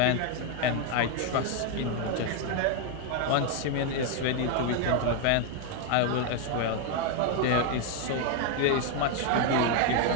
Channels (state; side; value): different; both; correlation 0.01